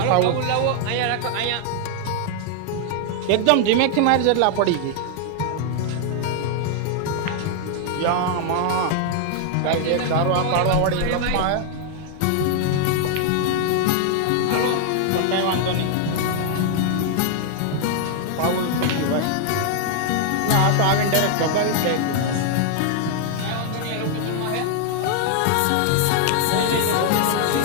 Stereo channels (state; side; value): different; both; correlation 0.00